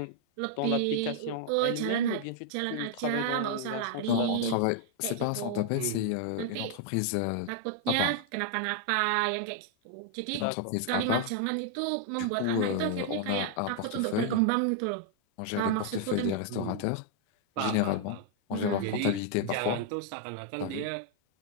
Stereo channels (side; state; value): both; different; correlation -0.01